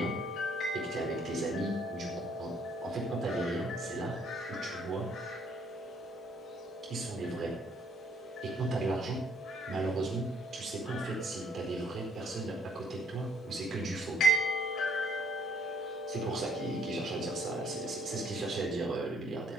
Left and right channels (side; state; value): both; normal; correlation 0.62